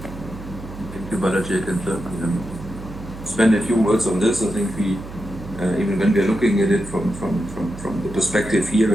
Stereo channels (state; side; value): noise; right; hum, 12 dB below the sound